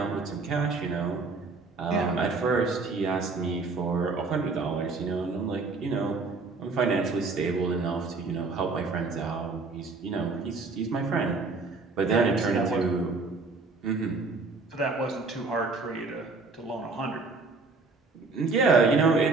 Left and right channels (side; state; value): left; quieter; 3.9 dB